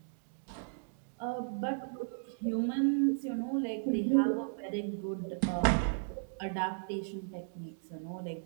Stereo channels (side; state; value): left; silent; digital silence